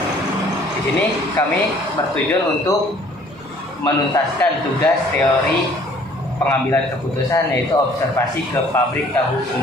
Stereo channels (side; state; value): both; normal; correlation 0.56